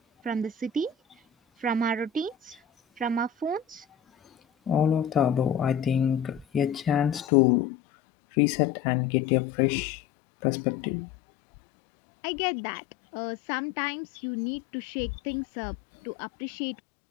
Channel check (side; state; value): right; drops out; at 7.2 s